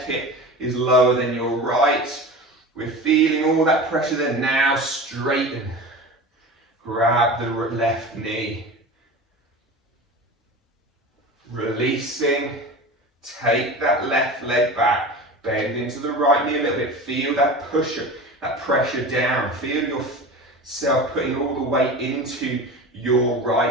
hip is lower than your right. We're feeling all that pressure there. Now straighten. Grab the left knee. Releasing. Take that left leg back. Bend into the right knee a little bit. Feel that push, that pressure down. Feel yourself putting all the weight into your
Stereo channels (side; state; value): both; normal; correlation 0.32